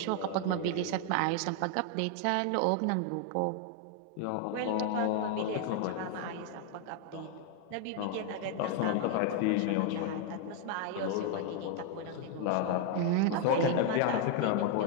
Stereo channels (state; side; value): different; both; correlation 0.00